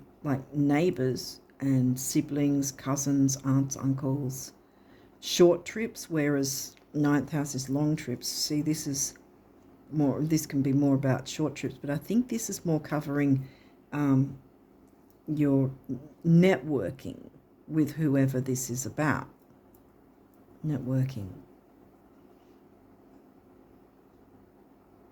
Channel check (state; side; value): identical; both; correlation 1.00